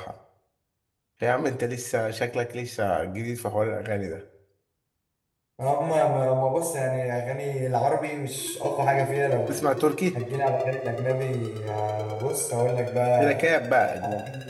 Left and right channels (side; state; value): both; identical; correlation 1.00